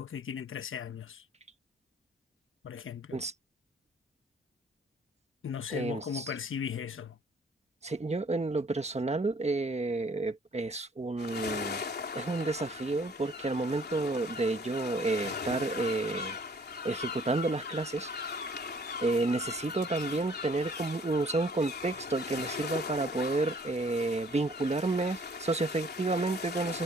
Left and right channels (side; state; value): both; normal; correlation 0.58